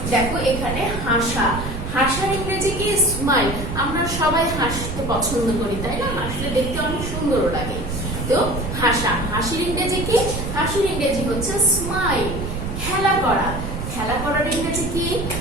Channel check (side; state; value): right; noise; rumble, 5 dB below the sound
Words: দেখো এখানে হাসা। হাসার ইংরেজি কি? স্মাইল। আমরা সবাই হাসতে পছন্দ করি, তাই না? হাসলে দেখতে অনেক সুন্দর লাগে। তো হাসা, হাসির ইংরেজি কি? হাসির ইংরেজি হচ্ছে স্মাইল। খেলা করা, খেলা করার ইংরেজি কি?